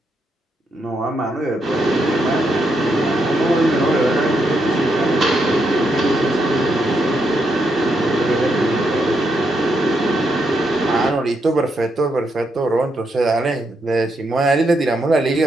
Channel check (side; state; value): both; normal; correlation 0.80